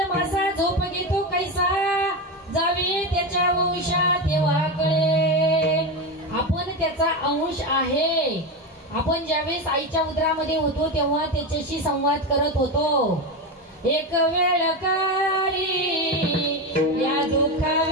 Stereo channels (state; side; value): normal; both; correlation 0.16